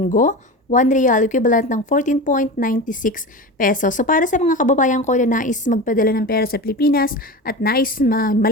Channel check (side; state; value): both; normal; correlation 0.27